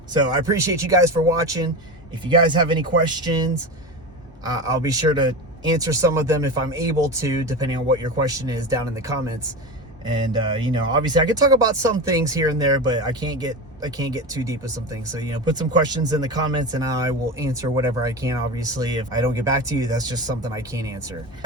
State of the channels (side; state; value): both; normal; correlation 0.24